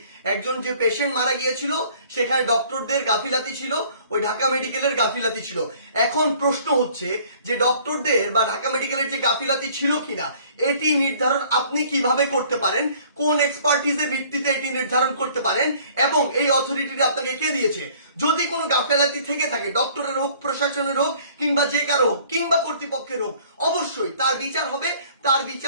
একজন যে পেশেন্ট মারা গিয়েছিল সেখানে ডক্টরদের গাফিলাতি ছিল, ওই ঢাকা মেডিকেলের গাফিলাতি ছিল। এখন প্রশ্ন হচ্ছে যে ডক্টরদের বা ঢাকা মেডিকেলের যে গাফিলাতি ছিল কিনা এটি নির্ধারণ আপনি কিভাবে করতে পারেন, কোন এক্সপার্টিজের ভিত্তিতে এটি নির্ধারণ করতে পারেন এবং এই অথরিটিটা আপনাকে কে দিয়েছে? যদি কোনো গাফিলাতি থেকে থাকে, ডক্টরের হোক, প্রশাসনের হোক, কিংবা যে কারো হোক, কিংবা কর্তৃপক্ষের হোক, অবশ্যই তার বিচার হবে। তার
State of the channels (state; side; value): inverted; both; correlation -0.55